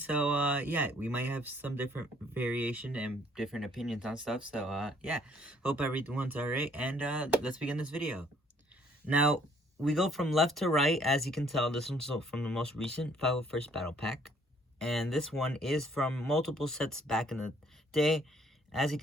yeah, we might have some different variation and different opinions on stuff, so yeah, hope everyone's alright, and let's begin this video. Now, we go from left to right. As you can tell, this one's from the most recent 501st Battle Pack. And this one is from multiple sets back in the day. As you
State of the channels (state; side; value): normal; both; correlation 0.62